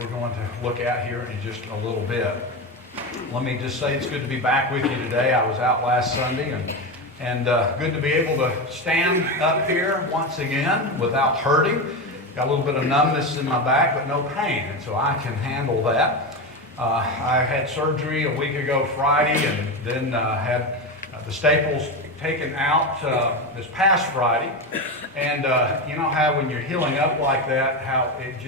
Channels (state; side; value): normal; both; correlation 0.17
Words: going to look at here in just a little bit. Let me just say it's good to be back with you today. I was out last Sunday, and good to be able to stand up here once again without hurting. Got a little bit of numbness in my back, but no pain, and so I can handle that. I had surgery a week ago Friday, and then had the staples taken out this past Friday. And you know how when you're healing up like that, how it